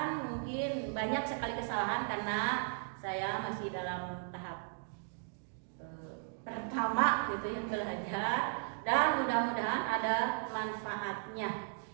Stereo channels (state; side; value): silent; left; 54 dB below the other